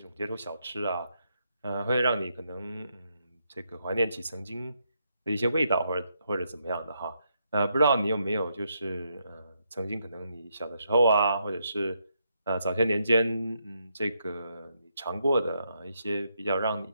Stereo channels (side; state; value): both; inverted; correlation -0.79